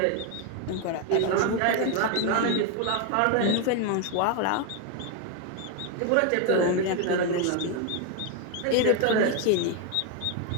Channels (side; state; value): both; different; correlation 0.01